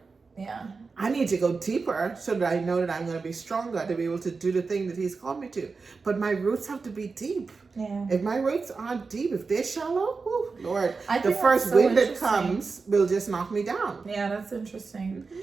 Yeah. I need to go deeper so that I know that I'm going to be stronger to be able to do the thing that He's called me to. But my roots have to be deep. Yeah. If my roots aren't deep, if they're shallow, whew, Lord, I the think first that's so wind that interesting. comes will just knock me down. Yeah, that's interesting.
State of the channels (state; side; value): quieter; left; 4.5 dB